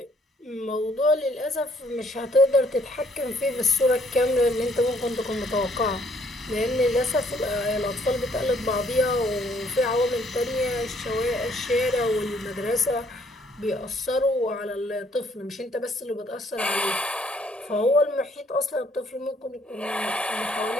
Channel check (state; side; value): normal; both; correlation 0.65